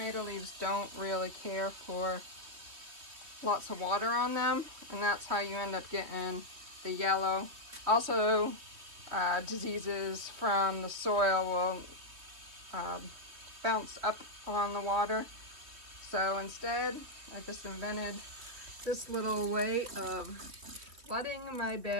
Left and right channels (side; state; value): left; late; 3.4 ms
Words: leaves don't really care for lots of water on them, and that's how you end up getting the yellow. Also, diseases from the soil will bounce up on the water. So instead, I just invented this little way of flooding my